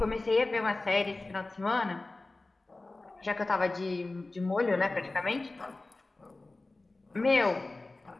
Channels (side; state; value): right; quieter; 3.1 dB